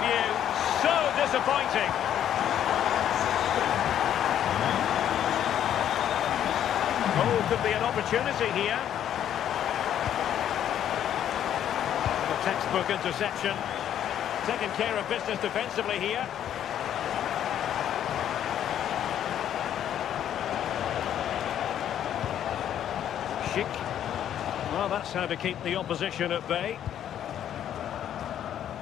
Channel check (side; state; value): right; quieter; 10.3 dB